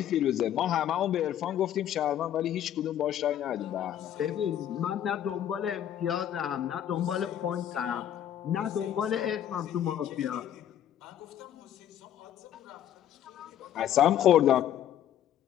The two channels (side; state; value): right; quieter; 10.7 dB